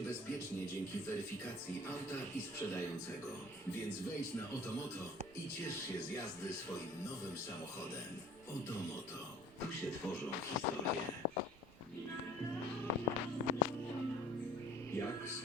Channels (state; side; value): normal; both; correlation 0.49